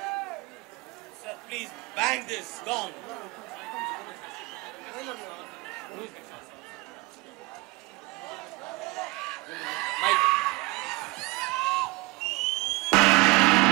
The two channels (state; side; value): quieter; left; 23.2 dB